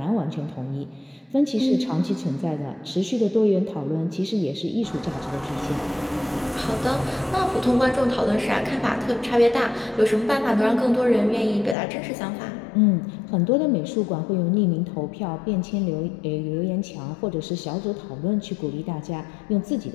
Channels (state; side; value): drops out; right; at 11.8 s